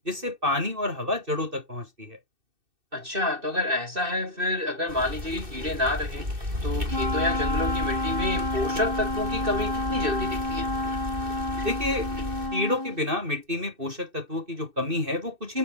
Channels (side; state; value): left; late; 2.6 ms